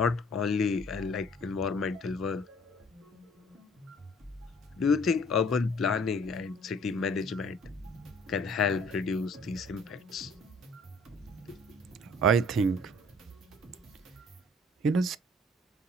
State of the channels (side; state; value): both; normal; correlation 0.56